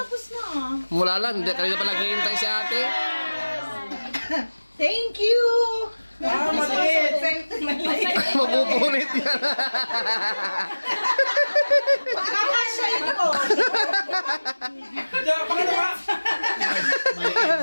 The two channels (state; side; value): inverted; both; correlation -1.00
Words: na? Mula lang, hindi kanina pa naghihintay si ate. Thank you. Maliit. Mapupunit yan. Kakasya ito. Diyan, pakita ka.